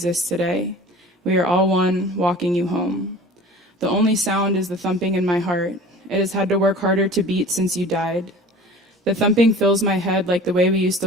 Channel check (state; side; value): normal; both; correlation 0.42